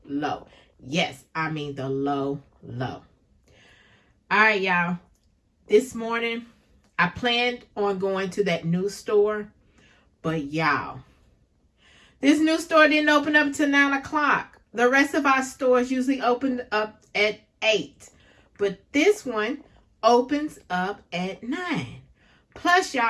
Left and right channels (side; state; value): both; identical; correlation 1.00